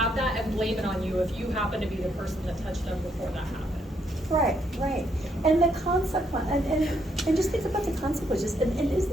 that and blame it on you if you happen to be the person that touched them before that happened. Right. And the consequence, and just think about the consequences, and isn't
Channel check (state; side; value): normal; both; correlation 0.74